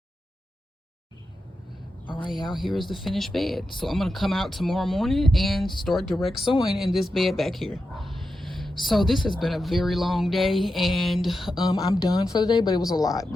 y'all, here is the finished bed. So I'm gonna come out tomorrow morning and start direct sewing in this bed back here. So this has been a very long day, and I'm done for the day, but it was a lot.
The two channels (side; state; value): both; normal; correlation 0.89